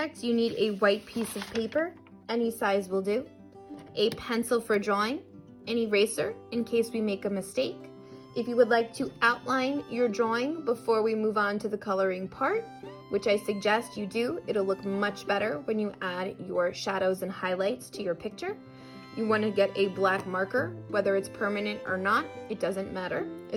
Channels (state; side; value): identical; both; correlation 1.00